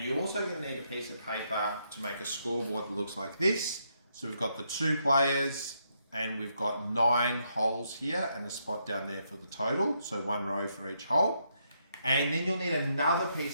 you're also going to need a piece of paper to make a scoreboard that looks like this. So we've got the 2 players and we've got 9 holes here and a spot down there for the total. So 1 row for each hole. And then you'll need another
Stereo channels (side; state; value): both; inverted; correlation -0.77